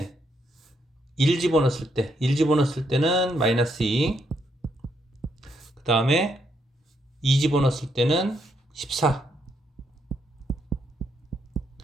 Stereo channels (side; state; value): both; normal; correlation 0.76